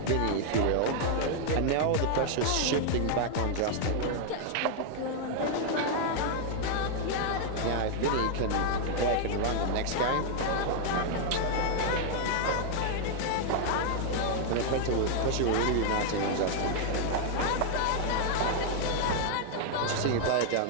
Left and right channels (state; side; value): different; both; correlation 0.00